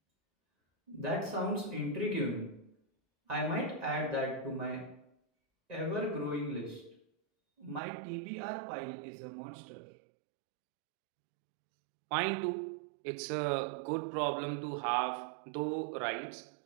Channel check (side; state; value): left; drops out; at 7.8 s